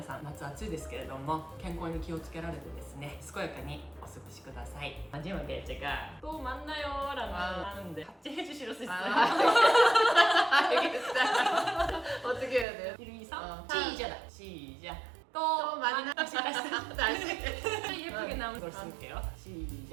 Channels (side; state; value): left; drops out; at 12.7 s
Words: さん、夏暑いですけれども健康に気をつけられてですね、健やかにお過ごしください。마지막에 제가 또 만나요라고 하는데 같이 해주실 수 있어요? 알겠다. 어떻게 해야 돼요? 1, 2, 3 시작. 시작! 시작! 또 만나 예쁘게 나온 걸 쓸게요.